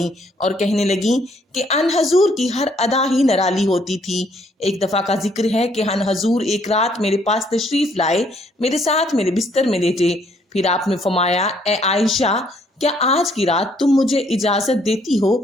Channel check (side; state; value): both; normal; correlation 0.67